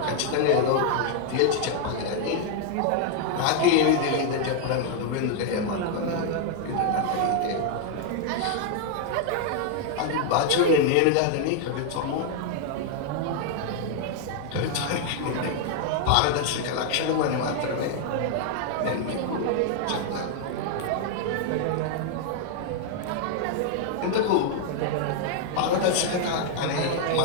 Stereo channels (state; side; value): different; both; correlation 0.00